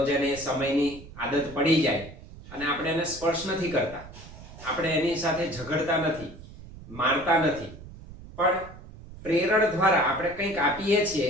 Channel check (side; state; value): right; noise; rumble, 16 dB below the sound